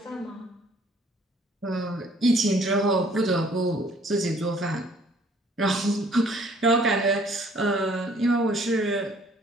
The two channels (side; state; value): both; normal; correlation 0.59